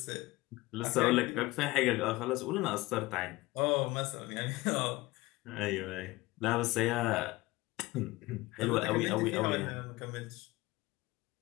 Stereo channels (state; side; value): quieter; right; 20.4 dB